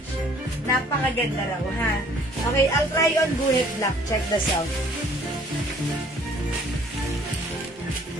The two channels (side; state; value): both; normal; correlation 0.57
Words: Napakaganda raw, ha? Okay, I'll try on guhit black. Check the sound.